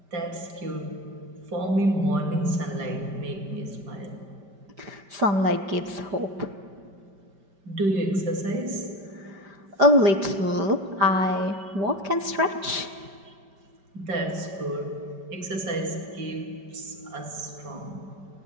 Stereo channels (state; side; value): late; left; 5.1 ms